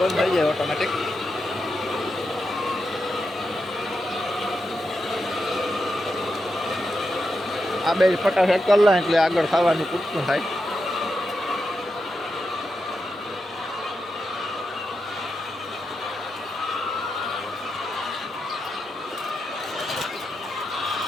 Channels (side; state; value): both; normal; correlation 0.87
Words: બંધ થઈ જાય ઓટોમેટિક. આ બે ફટાફટ કરી લે એટલે આગળ ખાવાનું પૂરતું થાય.